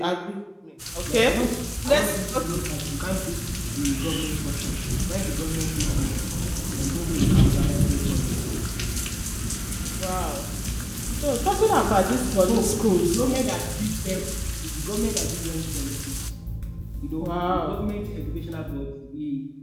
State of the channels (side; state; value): both; identical; correlation 1.00